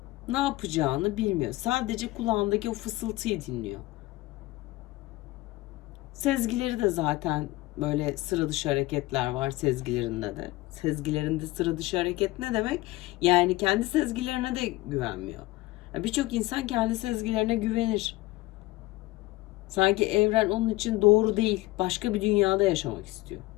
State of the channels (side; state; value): right; quieter; 19.0 dB